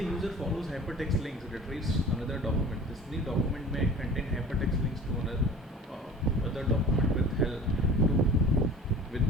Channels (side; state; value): both; normal; correlation 0.42